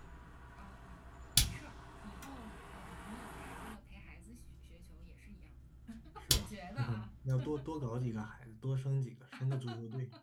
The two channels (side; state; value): both; identical; correlation 1.00